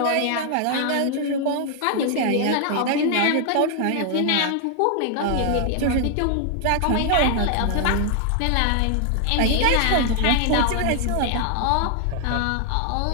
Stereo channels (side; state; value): both; different; correlation 0.00